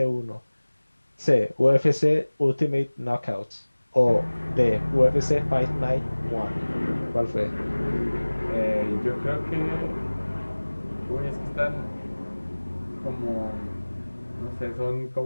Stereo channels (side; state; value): both; inverted; correlation -1.00